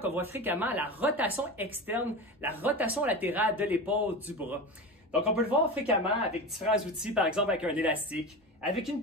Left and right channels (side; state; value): both; normal; correlation 0.26